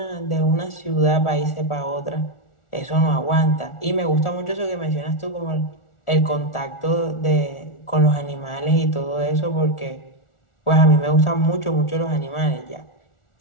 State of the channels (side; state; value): right; late; 1.4 ms